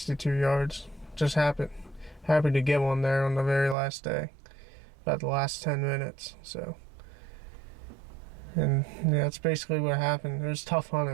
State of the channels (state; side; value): drops out; left; at 3.8 s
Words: yards. Just happy to get one there on the very last day, about the last 10 minutes. So, and yeah, that's basically what happened. It was tough